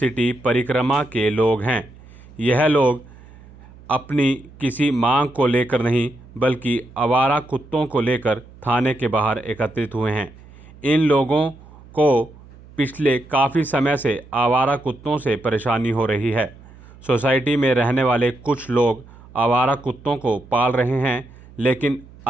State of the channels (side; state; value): right; noise; hum, 22 dB below the sound